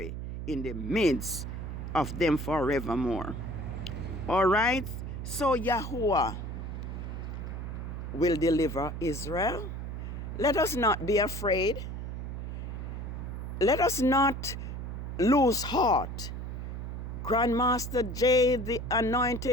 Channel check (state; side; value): noise; right; hum, 6 dB below the sound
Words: in the midst of them forevermore. All right. So Yahuwah will deliver Israel. Let us not be afraid. Let us not lose heart. Grandmaster J, the